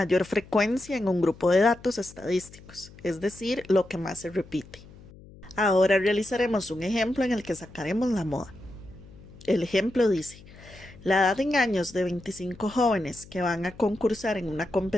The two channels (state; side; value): noise; left; hum, 21 dB below the sound